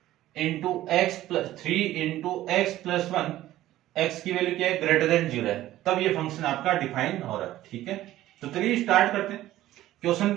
into x plus 3 into x plus 1, x की वैल्यू क्या है, ग्रेटर देन 0 है, तब ये फंक्शन आपका डिफाइन हो रहा है। ठीक है, तो चलिए स्टार्ट करते हैं। क्वेश्चन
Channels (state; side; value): quieter; left; 14.6 dB